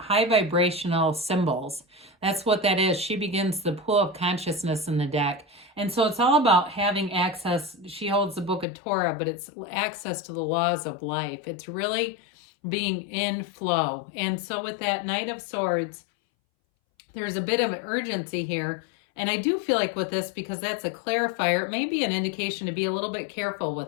vibrational symbols. That's what that is. She begins the pool of consciousness in the deck. And so it's all about having access. She holds the book of Torah, but it's access to the laws of life. It's really being in flow. And so with that Knight of Swords, there's a bit of urgency here. And I do feel like with this, because that's a clarifier, it may be an indication to be a little bit careful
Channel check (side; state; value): right; drops out; at 8.7 s